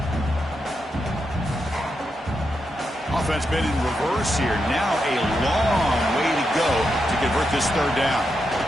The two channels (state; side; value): normal; both; correlation 0.85